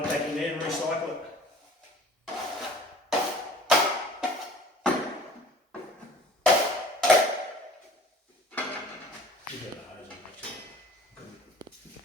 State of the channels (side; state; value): both; normal; correlation 0.48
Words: back in there and recycle it. You got the hose on, actually.